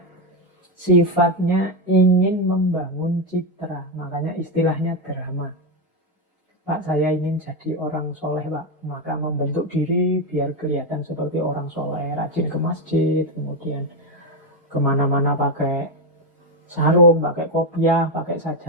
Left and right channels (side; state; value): both; normal; correlation 0.08